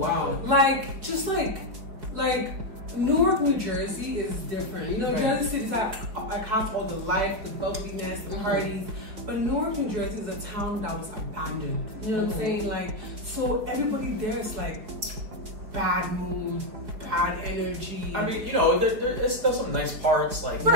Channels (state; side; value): late; left; 5.0 ms